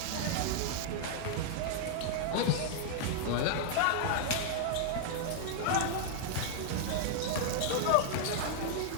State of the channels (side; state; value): both; different; correlation -0.01